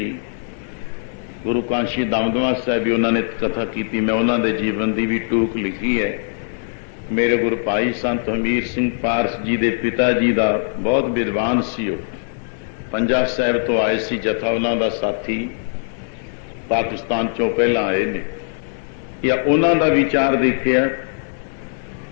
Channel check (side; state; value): right; silent; digital silence